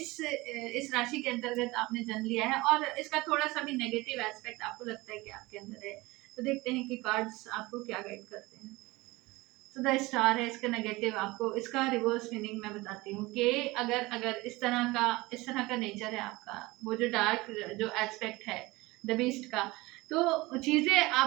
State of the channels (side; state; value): left; quieter; 21.3 dB